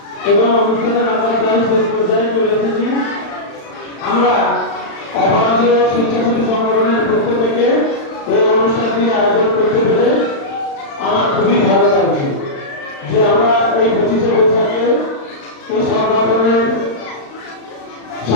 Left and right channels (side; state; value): right; late; 35 ms